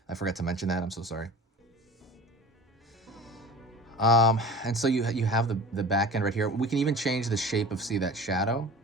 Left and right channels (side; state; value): both; normal; correlation 0.38